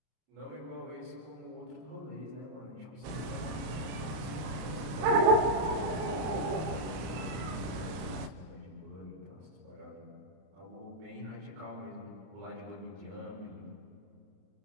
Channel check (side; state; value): left; late; 32 ms